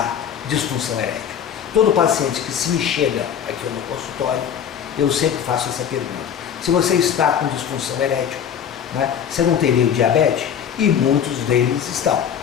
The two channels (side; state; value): right; quieter; 8.5 dB